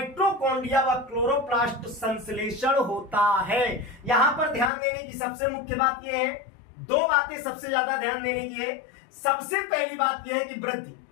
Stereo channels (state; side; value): drops out; right; at 4.7 s